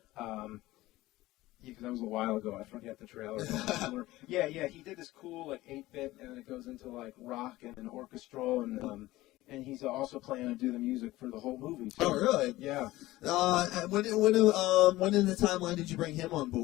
Because that was a while ago. I forget the trailer. Yeah, he did this cool like 8-bit, and it goes into like rock and orchestral, and and he's also planning to do the music for the whole movie too. Oh, really? Yeah. When in the timeline did you bring him on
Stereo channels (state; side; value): quieter; right; 17.6 dB